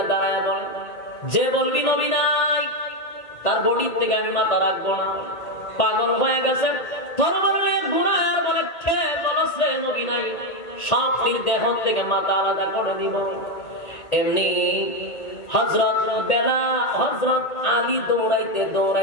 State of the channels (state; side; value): late; right; 1.8 ms